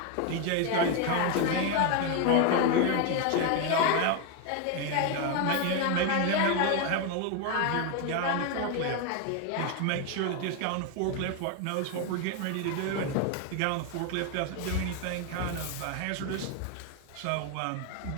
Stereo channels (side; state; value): both; different; correlation 0.01